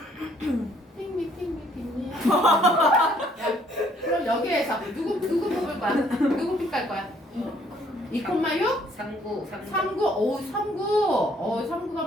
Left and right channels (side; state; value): both; normal; correlation 0.64